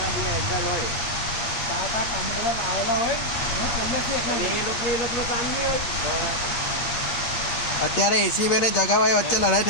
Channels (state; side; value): late; right; 8.5 ms